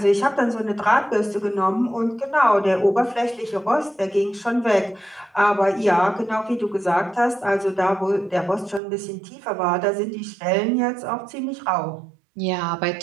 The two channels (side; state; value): left; drops out; at 8.8 s